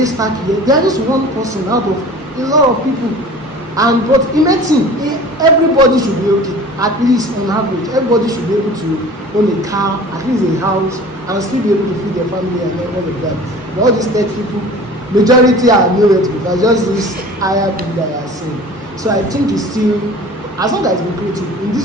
stack here. They are just one person out of a lot of people. And but in medicine, everybody should be okay. At least on average, everybody should be able to own a car, at least a house, and still be able to feed their family and all of that. But all these tech people, majority are nowhere to be. Just this higher people that are saying. So I think it's still, as long as it's lucrative in this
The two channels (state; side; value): normal; both; correlation 0.42